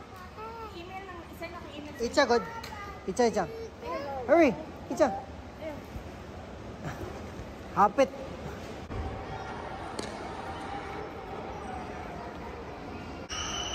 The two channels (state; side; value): identical; both; correlation 1.00